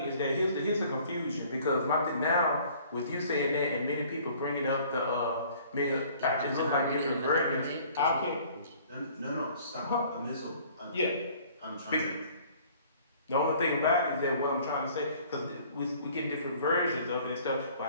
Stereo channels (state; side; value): inverted; both; correlation -0.54